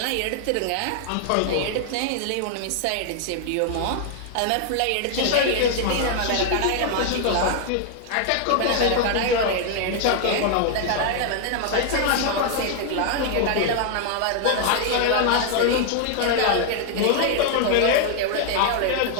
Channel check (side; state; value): both; different; correlation 0.00